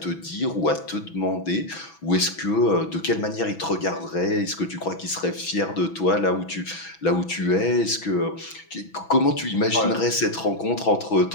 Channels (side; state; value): right; late; 6.1 ms